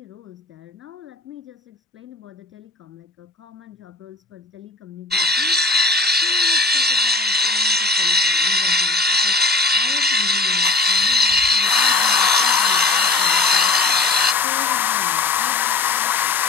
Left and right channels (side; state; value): right; quieter; 3.5 dB